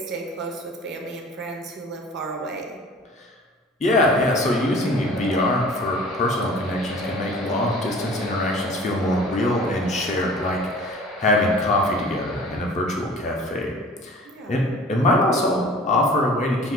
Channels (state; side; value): normal; both; correlation 0.46